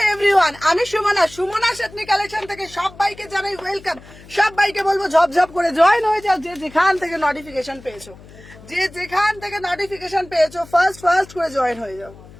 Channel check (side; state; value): left; noise; hum, 21 dB below the sound